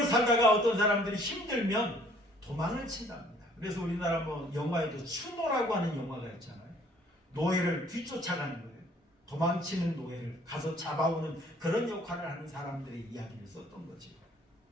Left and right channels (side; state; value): both; normal; correlation 0.59